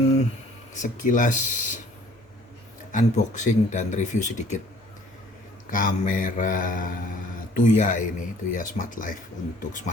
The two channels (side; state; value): both; normal; correlation 0.55